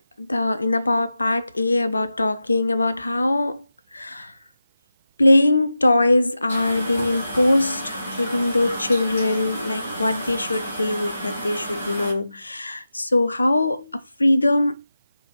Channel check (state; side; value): inverted; both; correlation -0.93